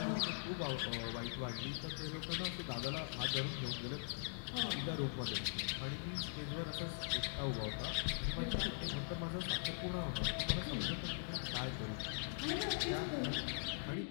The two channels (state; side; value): silent; right; digital silence